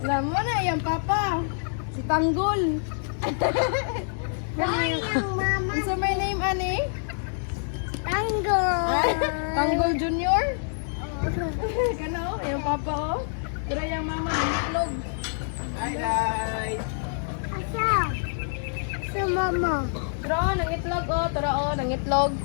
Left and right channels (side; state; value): right; silent; digital silence